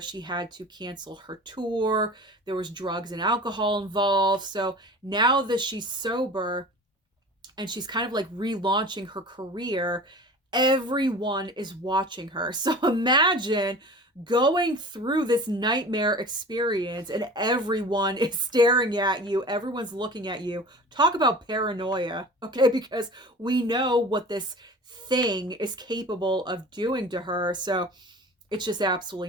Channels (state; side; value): normal; both; correlation 0.39